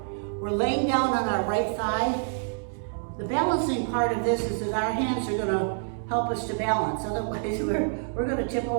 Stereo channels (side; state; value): left; silent; digital silence